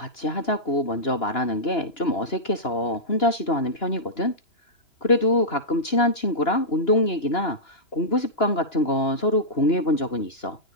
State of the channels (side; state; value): right; late; 2.9 ms